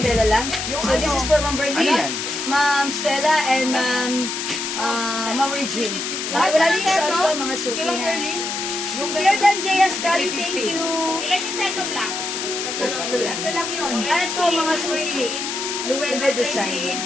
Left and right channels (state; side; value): noise; left; hiss, 4 dB below the sound